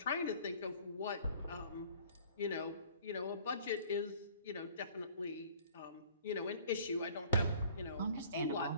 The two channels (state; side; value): inverted; both; correlation -0.52